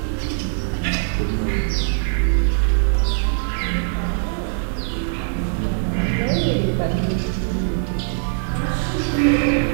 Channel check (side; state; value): left; silent; 58 dB below the other